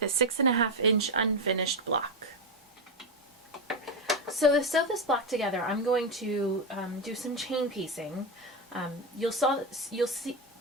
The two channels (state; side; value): normal; both; correlation 0.10